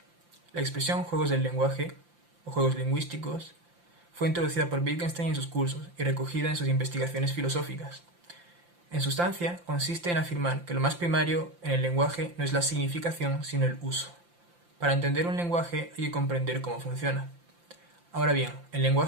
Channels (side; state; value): left; late; 5.8 ms